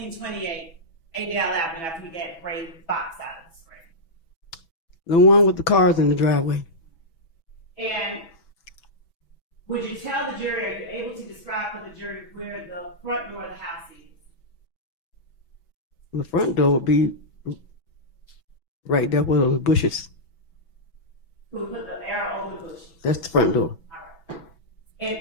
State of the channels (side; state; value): right; late; 6.1 ms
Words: Adele Avenue after we get gray box out of the screen? The one with the cars in the driveway. And would you tell the jury, are you able to describe for the jury where the front door of the house is? The front door would be right there where those bushes. Who put the arrow over the bushes? That's the front door. All right. And